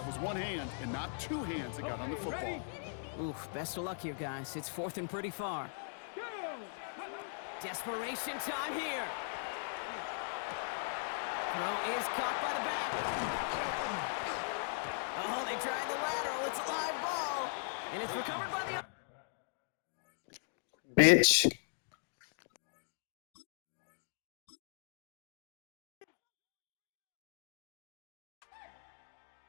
was one hand and not two hands that got on the football. Oof, best of luck here, guys. It's 4th and pretty far. Go! Desperation time here. Throw is caught by the back. Oh, they tried the lateral. It's a live ball. And it's recovered by the... Bitch.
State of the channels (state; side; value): silent; right; digital silence